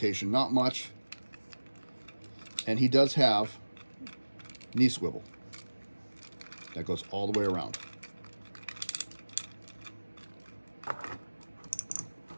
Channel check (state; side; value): inverted; both; correlation -1.00